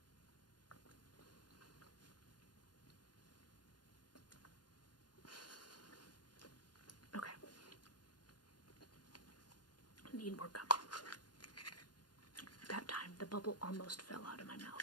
Okay. Need more gum. That time, the bubble almost fell out of my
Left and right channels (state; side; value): late; right; 0.70 ms